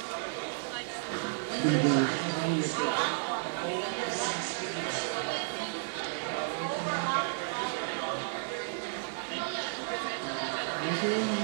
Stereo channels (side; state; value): left; silent; digital silence